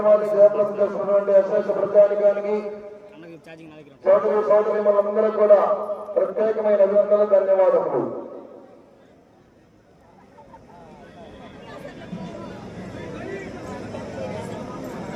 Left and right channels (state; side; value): identical; both; correlation 1.00